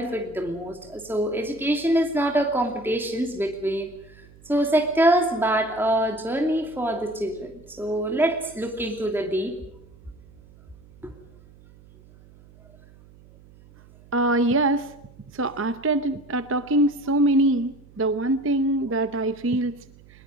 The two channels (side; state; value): right; noise; hum, 24 dB below the sound